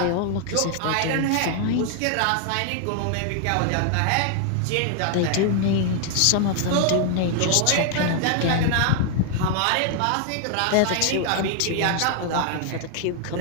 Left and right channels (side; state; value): both; different; correlation 0.00